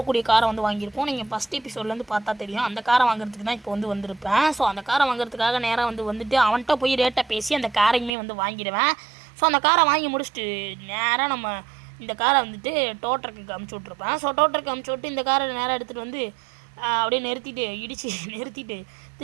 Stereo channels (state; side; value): drops out; left; at 8.1 s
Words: காரை வந்து வாங்கியிருப்போம். நீங்கள் ஃபஸ்ட் எபிசோட்லேருந்து பார்த்தா தெரியும். அந்த காரை வாங்குறதுக்கு தான் இப்போ வந்து வந்திருப்பேன். ஸோ அந்த காரை வாங்குறதுக்காக நேராக வந்துட்டு அவன்கிட்ட போய் ரேட்டை பேசி அந்த காரையுமே வந்து வாங்கிடுவேன். ஸோ அந்த காரை வாங்கி முடிச்சுட்டு நேராக நம்ம இந்த காரை வந்துட்டு டோட்டருக்கு அமுச்சு விட்ருப்பேன். ஸோ டோட்டருக்கு அமுச்சு விட்டு இந்த காரை நேராக எடுத்துகிட்டு வந்து அப்படியே நிறுத்திட்டு